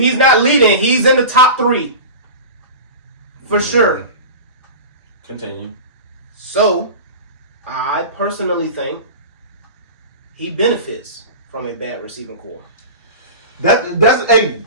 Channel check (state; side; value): inverted; both; correlation -0.31